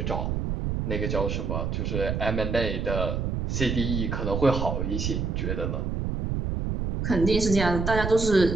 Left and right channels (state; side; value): noise; right; rumble, 1 dB below the sound